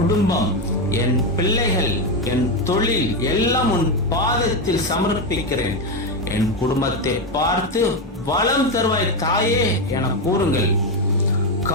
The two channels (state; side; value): normal; both; correlation 0.10